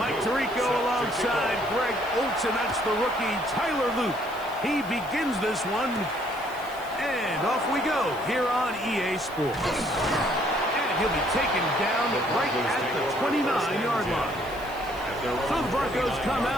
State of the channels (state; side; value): noise; right; hiss, 21 dB below the sound